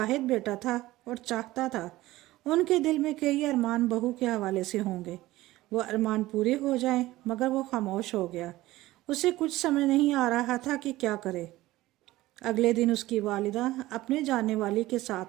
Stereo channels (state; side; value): quieter; left; 17.3 dB